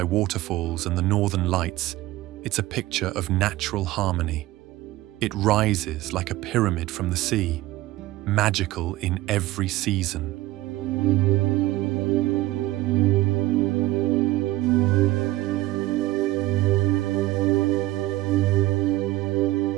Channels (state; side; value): quieter; left; 17.1 dB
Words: waterfalls and the northern lights, it's a picture of natural harmony. It rises like a pyramid from the sea, magical in every season.